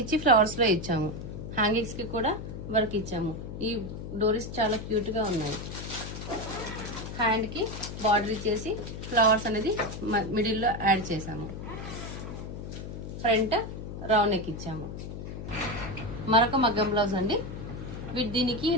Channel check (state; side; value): noise; left; hum, 8 dB below the sound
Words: ఇచ్చి ఫ్లవర్స్లో ఇచ్చాము. హ్యాంగింగ్స్కి కూడా వర్క్ ఇచ్చాము. ఈ డోరీస్ చాలా క్యూట్గా ఉన్నాయి. హ్యాండ్కి బార్డర్ ఇచ్చేసి ఫ్లవర్స్ అనేది మిడిల్లో యాడ్ చేసాము. ఫ్రంట్ రౌండ్ నెక్ ఇచ్చాము. మరొక మగ్గం బ్లౌజ్ అండి. దీనికి